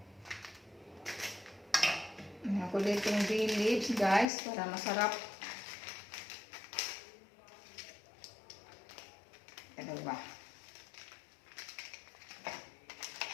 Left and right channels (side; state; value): right; drops out; at 4.3 s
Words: Ako dito yung bay leaves guys para masarap. Ano ba?